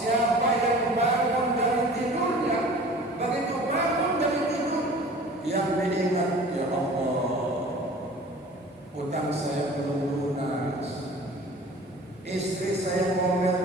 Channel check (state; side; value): normal; both; correlation 0.44